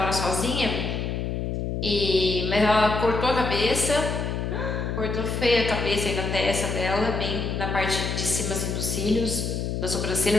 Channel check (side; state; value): left; noise; hum, 2 dB below the sound